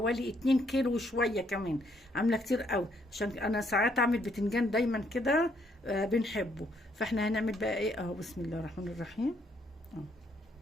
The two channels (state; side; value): normal; both; correlation 0.71